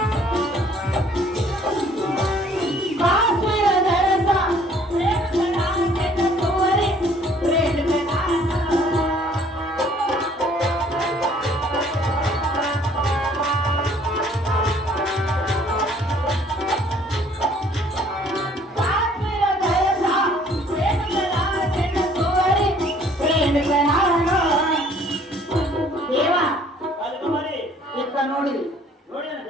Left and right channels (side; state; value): both; normal; correlation 0.58